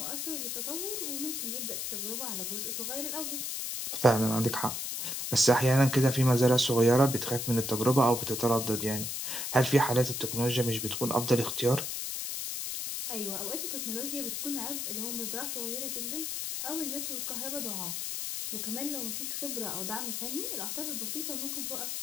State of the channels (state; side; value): noise; left; hiss, 3 dB below the sound